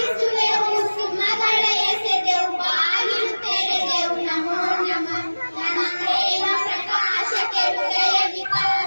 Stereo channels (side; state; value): both; inverted; correlation -1.00